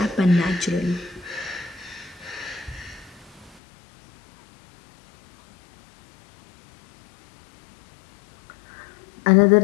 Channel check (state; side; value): drops out; right; at 3.6 s